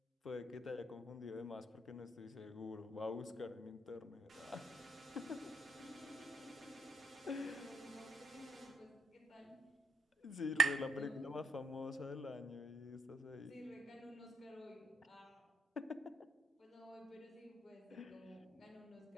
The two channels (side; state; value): both; normal; correlation 0.76